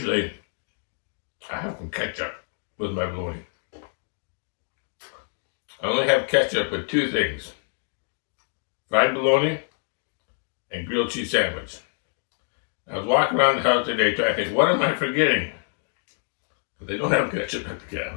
I have some ketchup with my bologna. I only have ketchup with two things: fried bologna and grilled cheese sandwich. I was walking around the house today trying to think, what am I forgetting? But they don't have ketchup at the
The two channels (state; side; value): silent; right; 61 dB below the other